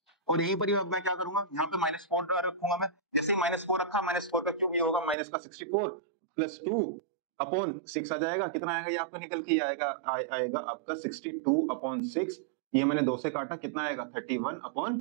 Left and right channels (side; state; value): left; drops out; at 5.2 s